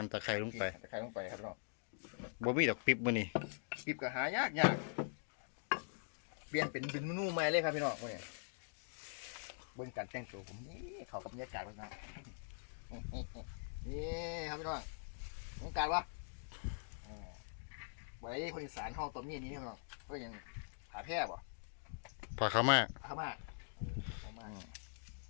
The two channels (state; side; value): silent; right; digital silence